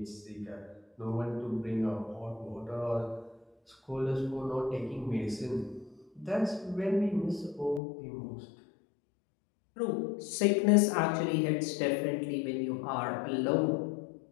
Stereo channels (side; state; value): right; drops out; at 7.8 s